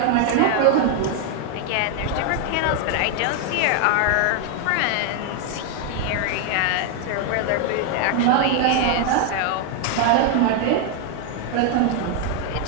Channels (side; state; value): both; different; correlation 0.00